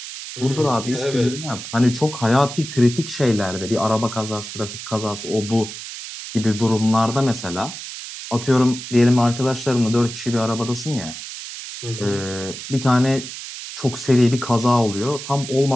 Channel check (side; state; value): right; noise; hiss, 10 dB below the sound